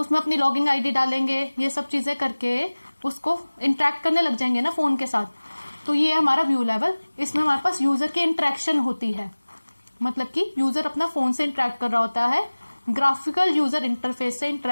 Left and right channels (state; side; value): inverted; both; correlation -1.00